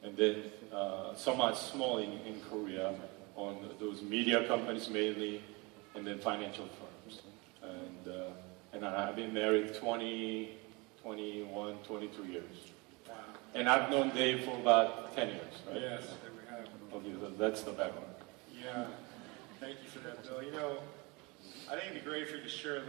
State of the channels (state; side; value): quieter; left; 26.9 dB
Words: and then somewhat small in Korea, on those media companies mainly, and then financial firms. And I've been married 20, 21, 22 years. Wow. And I've known Dave for about 10 years, right? Yes, we have. Okay, so that's the background. Yeah, thank you for that, Bill. I think it'd be great for you to share a